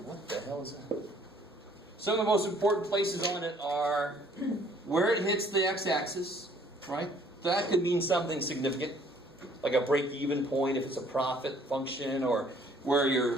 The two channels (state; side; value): normal; both; correlation 0.59